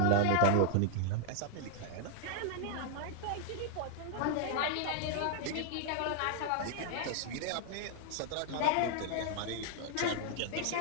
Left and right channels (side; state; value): both; different; correlation 0.00